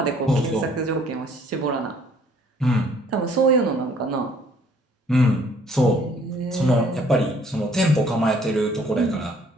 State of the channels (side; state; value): both; normal; correlation 0.59